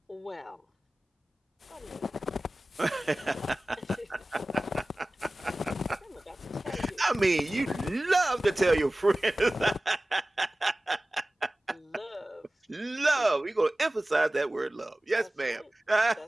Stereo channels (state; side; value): normal; both; correlation 0.97